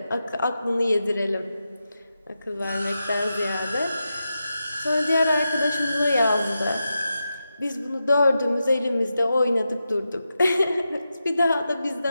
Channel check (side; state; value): both; inverted; correlation -0.89